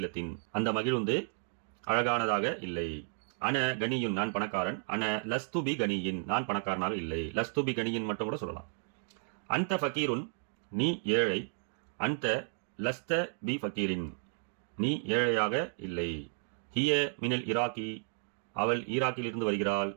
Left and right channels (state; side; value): silent; left; 56 dB below the other